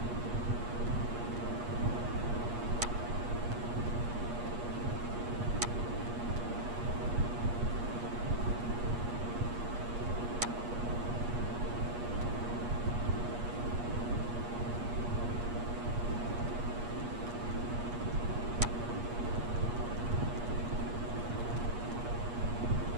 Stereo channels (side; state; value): left; late; 8.4 ms